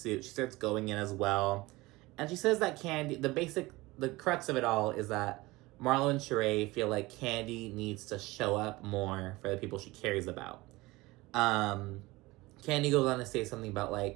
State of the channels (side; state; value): left; quieter; 20.9 dB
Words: she starts going in as well. And she says that Kandi, the crux of it all is that Marlo and Shereé feel like Kandi needs to show up more for the people she cares about. Kandi goes on to say something about,